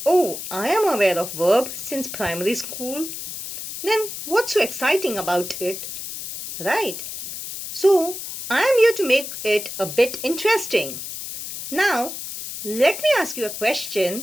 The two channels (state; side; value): noise; left; hiss, 8 dB below the sound